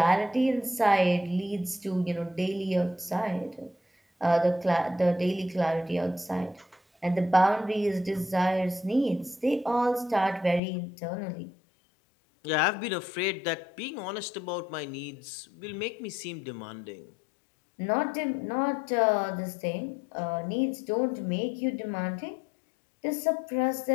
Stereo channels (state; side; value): drops out; right; at 10.6 s